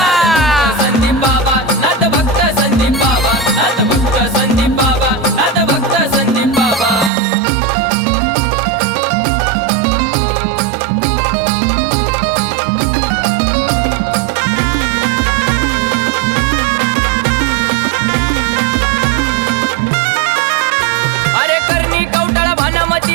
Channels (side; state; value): left; drops out; at 7.1 s